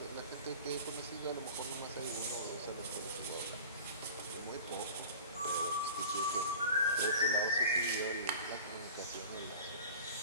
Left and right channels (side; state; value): both; inverted; correlation -0.39